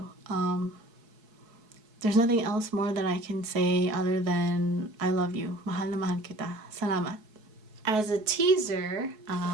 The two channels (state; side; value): late; left; 4.7 ms